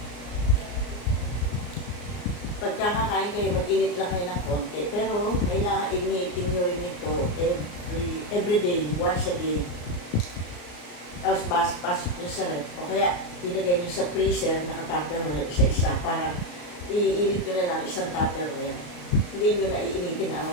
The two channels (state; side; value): late; right; 34 ms